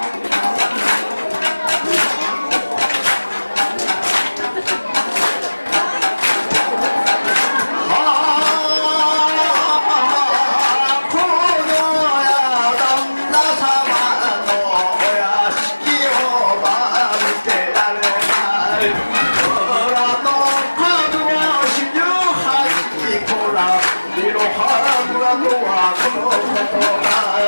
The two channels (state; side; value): inverted; both; correlation -1.00